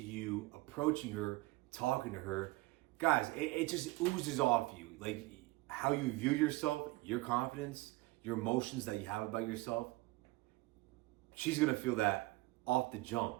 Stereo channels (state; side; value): quieter; left; 20.8 dB